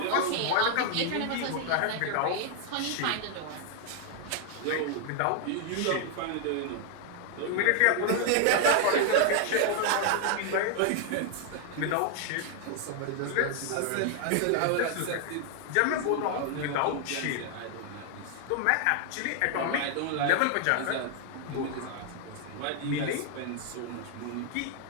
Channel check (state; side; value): different; both; correlation 0.00